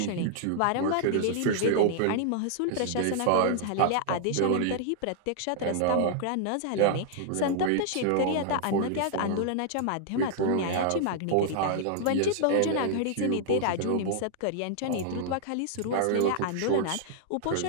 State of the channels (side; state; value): both; different; correlation -0.01